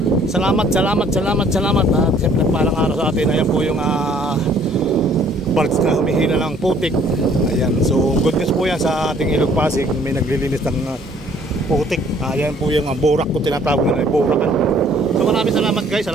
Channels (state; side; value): normal; both; correlation 0.59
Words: Salamat at siyempre parang araw sa atin. Ayan po yung parts na humihila ng putik. Ayan, so good news po yan sa ating ilog Pasig. May naglilinis ng putik. Ayan po yung burak ko tinatawag na burakan. So maraming salamat guys,